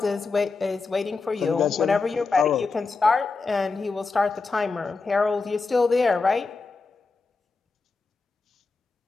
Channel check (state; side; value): quieter; right; 4.2 dB